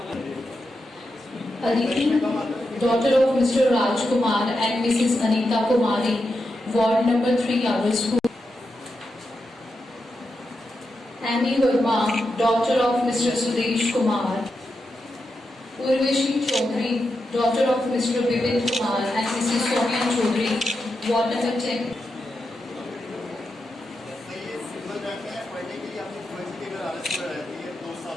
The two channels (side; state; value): both; normal; correlation 0.87